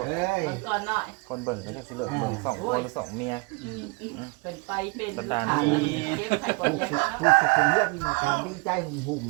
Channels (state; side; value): quieter; left; 28.2 dB